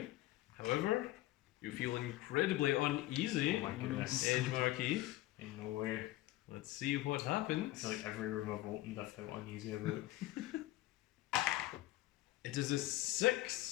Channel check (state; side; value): quieter; right; 16.7 dB